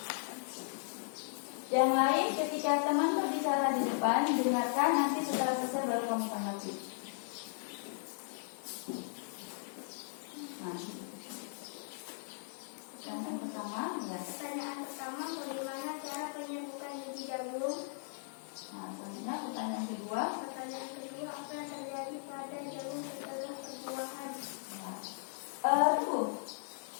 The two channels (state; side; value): silent; right; digital silence